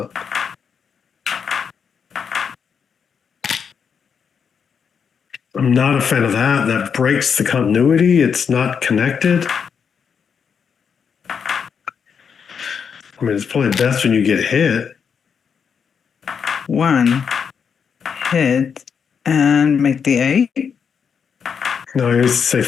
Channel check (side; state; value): right; quieter; 6.7 dB